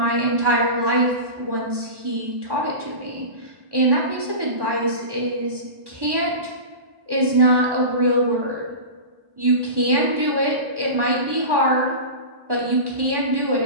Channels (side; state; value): left; late; 1.1 ms